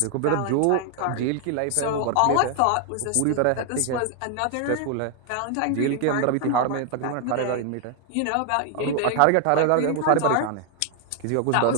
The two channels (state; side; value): different; both; correlation 0.00